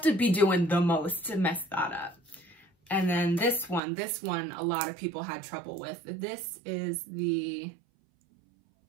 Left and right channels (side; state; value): left; drops out; at 3.8 s